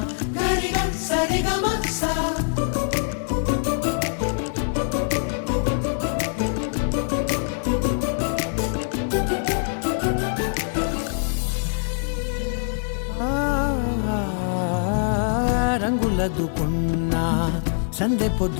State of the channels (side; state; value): right; silent; digital silence